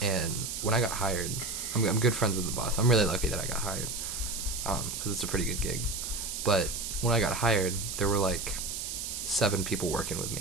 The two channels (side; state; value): right; noise; hiss, 5 dB below the sound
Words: and when I got hired, I'm good friends with the boss. I'm really lucky that I got hired, because it's a pretty good gig. But when I got hired, there were like 7 people working with